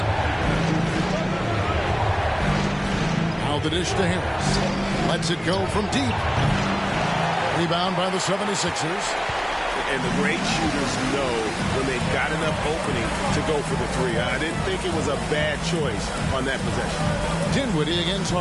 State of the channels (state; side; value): identical; both; correlation 1.00